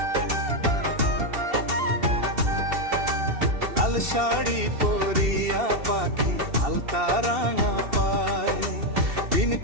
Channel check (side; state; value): left; late; 2.7 ms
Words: লাল শাড়ি পরিয়া পাখি আলতা রাঙা পাই, দিন